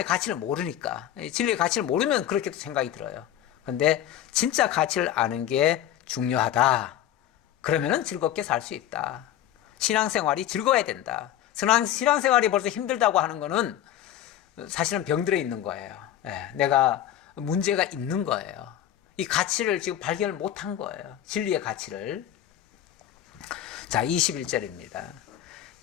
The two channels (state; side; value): quieter; right; 11.6 dB